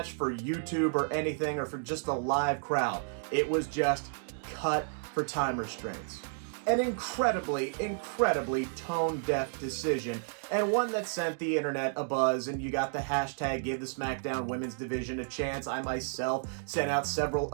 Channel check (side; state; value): left; silent; digital silence